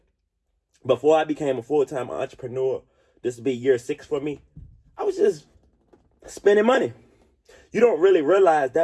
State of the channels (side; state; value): both; identical; correlation 1.00